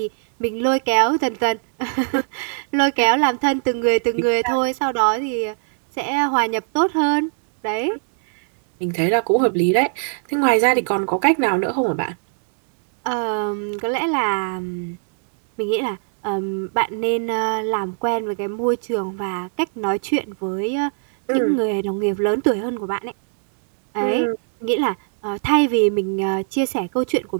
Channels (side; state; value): left; silent; digital silence